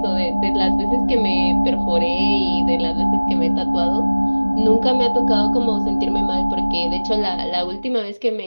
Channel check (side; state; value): both; inverted; correlation -1.00